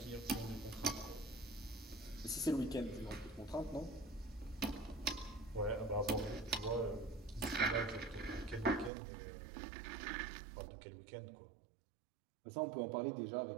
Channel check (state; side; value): drops out; left; at 8.9 s